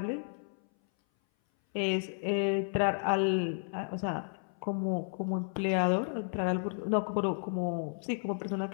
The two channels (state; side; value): silent; right; 56 dB below the other